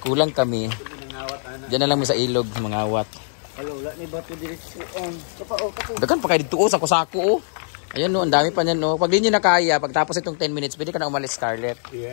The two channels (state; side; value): silent; right; digital silence